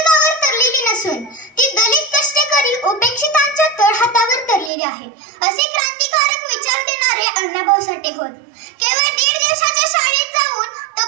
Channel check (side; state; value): left; drops out; at 4.7 s